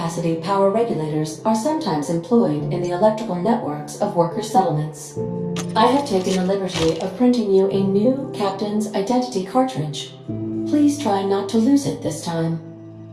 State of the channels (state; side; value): identical; both; correlation 1.00